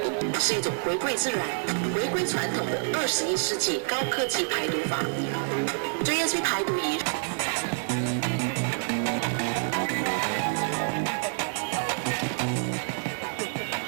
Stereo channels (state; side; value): silent; left; digital silence